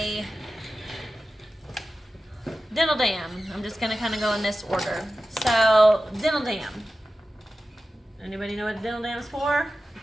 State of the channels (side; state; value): both; normal; correlation 0.94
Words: dental dam. I'm just gonna kind of go in this order. So dental dam. Anybody know what a dental dam is for?